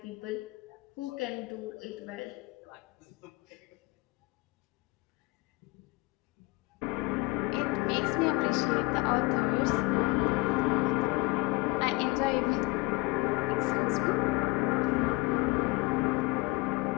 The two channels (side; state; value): right; quieter; 23.5 dB